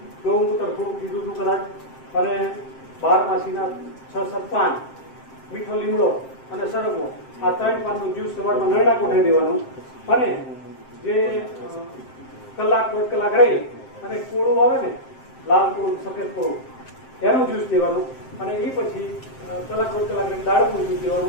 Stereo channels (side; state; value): right; late; 7.6 ms